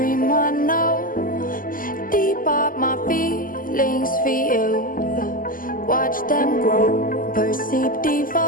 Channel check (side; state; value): right; late; 0.41 ms